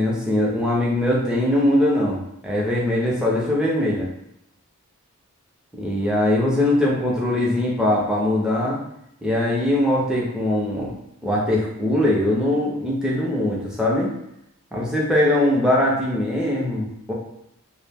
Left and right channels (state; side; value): normal; both; correlation 0.60